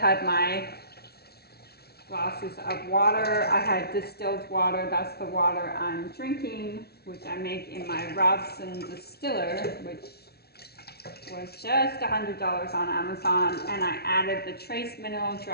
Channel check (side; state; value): right; late; 0.46 ms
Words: my glasses of water. I had distilled water. That's the water I'm drinking, which I make in my Robson distiller, which was just $100 on Amazon, and I added the trace mineral